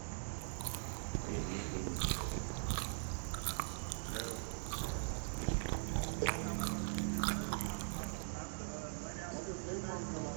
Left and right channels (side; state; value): left; silent; digital silence